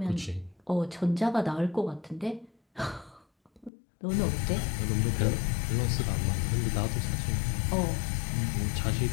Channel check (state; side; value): drops out; right; at 3.7 s